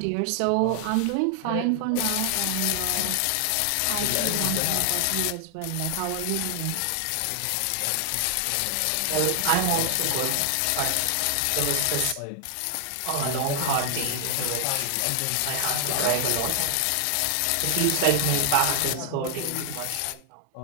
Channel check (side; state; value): both; different; correlation 0.00